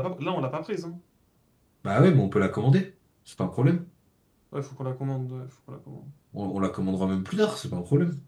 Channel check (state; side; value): identical; both; correlation 1.00